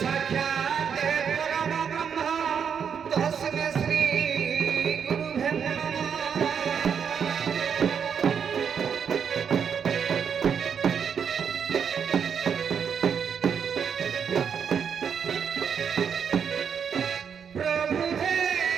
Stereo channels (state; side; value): quieter; left; 7.2 dB